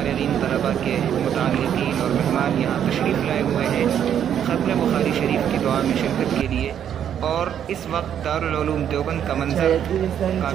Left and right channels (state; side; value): quieter; left; 9.4 dB